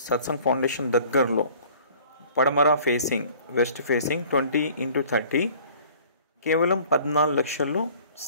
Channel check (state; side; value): inverted; both; correlation -0.51